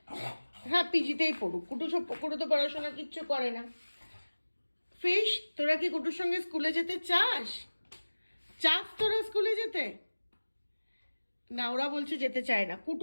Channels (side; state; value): both; inverted; correlation -1.00